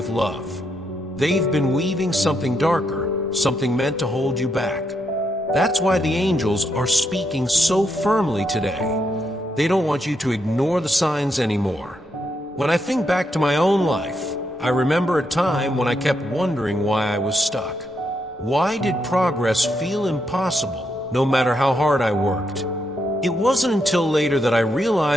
love. They've been weaving something darker, something meant to hold you back. That's why the angels are speaking so firmly today. They don't want you to ignore the signs anymore. When I think back to my own life, I remember a time when I kept wondering why I was stuck. Why did progress feel impossible, no matter how hard I worked? It wasn't until later that I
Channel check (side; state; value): both; normal; correlation 0.80